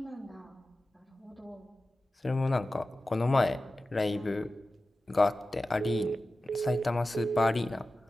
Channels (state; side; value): normal; both; correlation 0.94